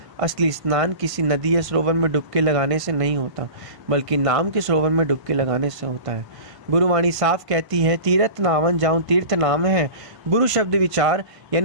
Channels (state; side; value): late; left; 1.5 ms